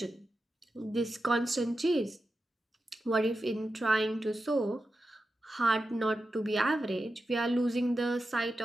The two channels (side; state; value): both; normal; correlation 0.91